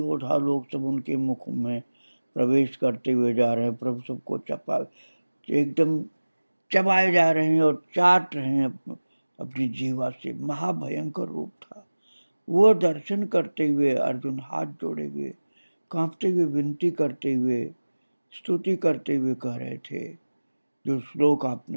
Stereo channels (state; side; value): inverted; both; correlation -1.00